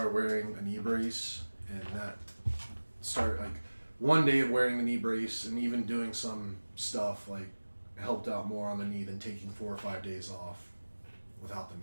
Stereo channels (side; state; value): both; inverted; correlation -1.00